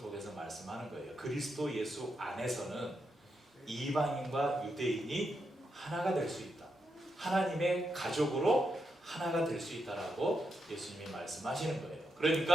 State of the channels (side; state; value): both; normal; correlation 0.84